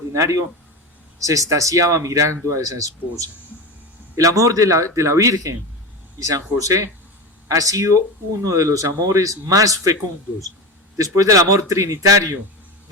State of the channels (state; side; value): normal; both; correlation 0.22